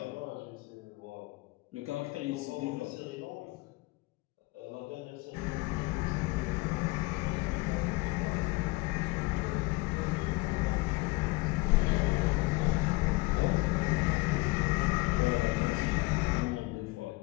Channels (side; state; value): right; quieter; 23.1 dB